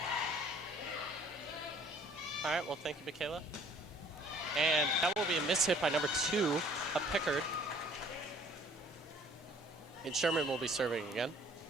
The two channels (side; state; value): both; normal; correlation 0.55